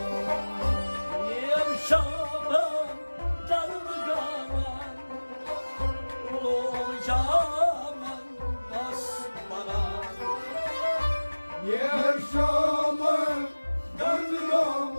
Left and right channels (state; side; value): inverted; both; correlation -1.00